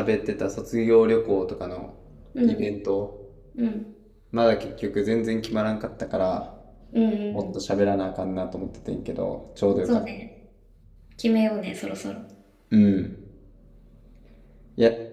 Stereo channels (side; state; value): both; identical; correlation 1.00